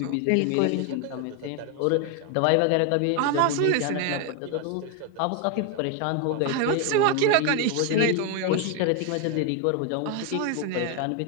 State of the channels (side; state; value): both; different; correlation 0.01